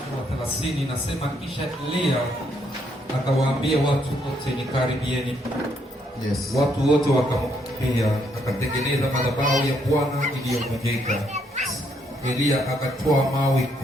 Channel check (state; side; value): normal; both; correlation 0.73